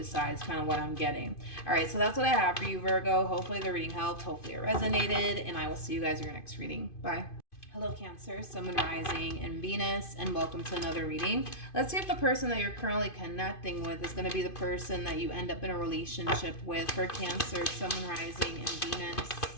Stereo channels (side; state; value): right; late; 2.5 ms